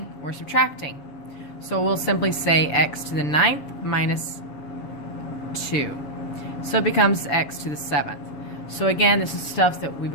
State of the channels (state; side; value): late; right; 6.9 ms